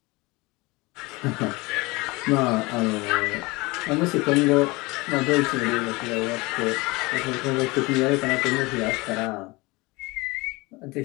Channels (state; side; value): quieter; right; 23.7 dB